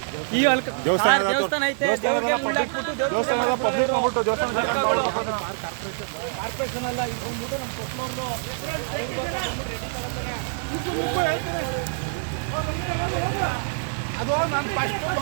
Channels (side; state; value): left; silent; 56 dB below the other